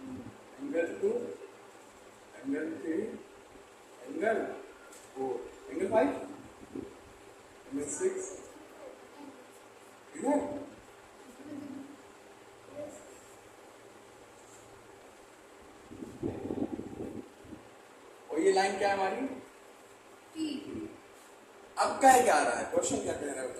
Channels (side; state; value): both; identical; correlation 1.00